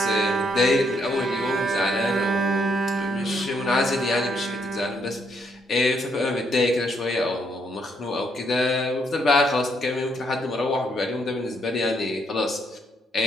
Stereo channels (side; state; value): both; normal; correlation 0.74